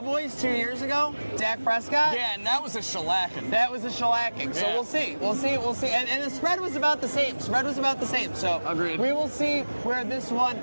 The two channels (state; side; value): inverted; both; correlation -1.00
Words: 2 years ago, Dak Prescott. Yeah, and that was a shellacking. So Yeah. we'll see. And the spread was about the same. So Agreed. we will see where this one